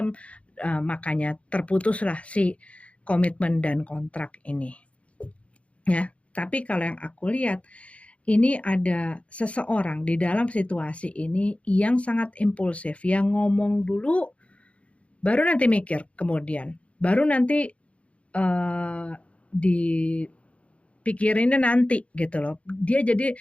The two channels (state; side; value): late; right; 0.063 ms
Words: makanya terputuslah si komitmen dan kontrak ini ya. Tapi kalau yang aku lihat, ini ada seseorang di dalam situasi ini yang sangat impulsif, yang ngomong dulu baru nanti mikir kemudian, baru nanti dipikirinnya nanti gitu loh. Dia jadi